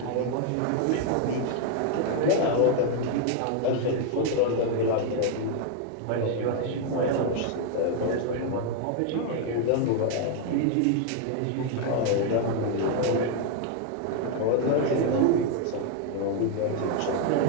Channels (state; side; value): different; both; correlation 0.00